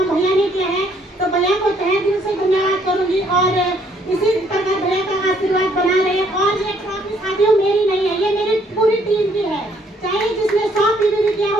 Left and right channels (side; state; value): both; normal; correlation 0.66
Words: भैया ने किया है। तो भैया को तहे दिल से धन्यवाद करूंगी और इसी प्रकार भैया का आशीर्वाद बना रहे। और ये ट्रॉफी साथियों मेरी नहीं है, ये मेरी पूरी टीम की है। चाहे जिसने 100 पीवी भी किया